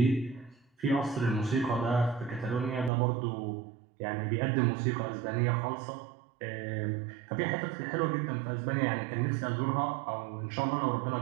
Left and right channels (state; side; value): drops out; left; at 2.9 s